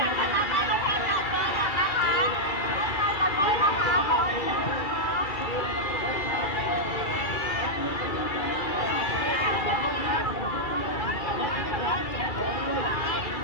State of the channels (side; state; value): right; late; 2.3 ms